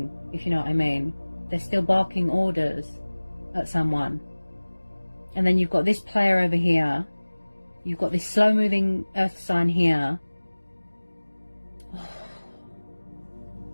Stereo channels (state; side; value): inverted; both; correlation -1.00